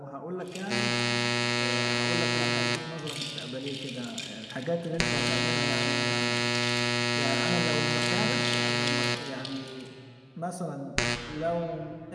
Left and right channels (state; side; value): identical; both; correlation 1.00